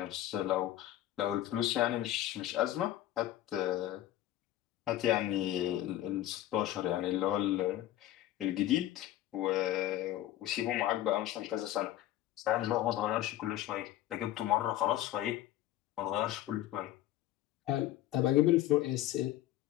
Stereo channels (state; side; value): quieter; right; 13.8 dB